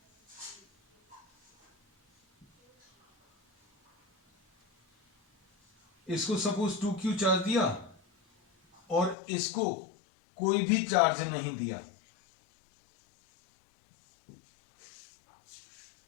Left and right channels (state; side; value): drops out; right; at 9.2 s